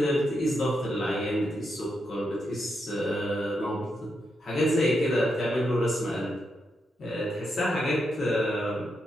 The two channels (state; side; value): normal; both; correlation 0.83